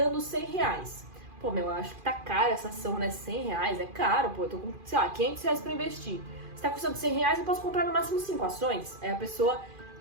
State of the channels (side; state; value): left; late; 2.4 ms